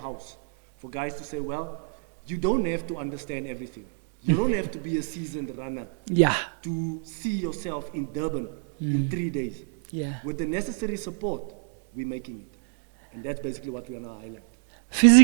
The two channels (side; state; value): left; quieter; 38.2 dB